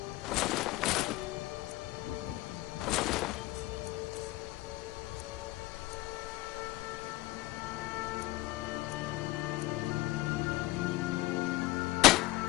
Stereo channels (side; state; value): right; quieter; 18.9 dB